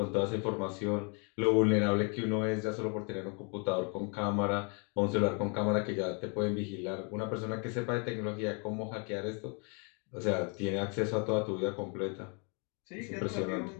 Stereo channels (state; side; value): quieter; right; 35.7 dB